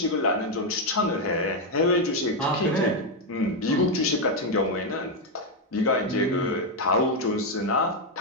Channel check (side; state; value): both; normal; correlation 0.04